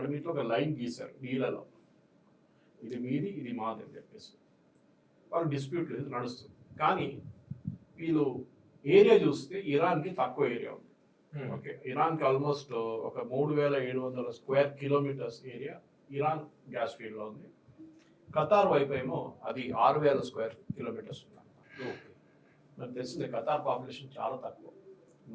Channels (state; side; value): identical; both; correlation 1.00